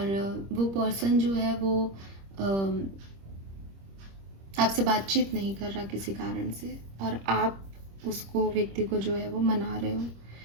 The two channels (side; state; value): left; late; 26 ms